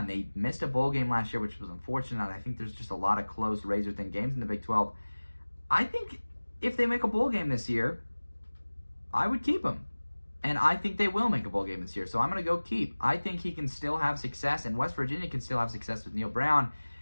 They missed a bowl game last year, which was unfortunate. I think there's just a lot of close, razor-thin games in the Big 12. I think if they make a bowl game this year, I would keep him. And I think they will make a bowl game this year. So I'm going to go keep. I think he can still have success, and West Virginia can still have success with Neil Brown.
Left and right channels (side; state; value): both; inverted; correlation -1.00